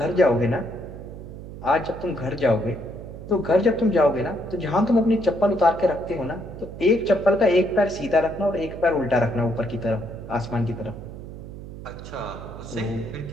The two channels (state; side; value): noise; right; hum, 12 dB below the sound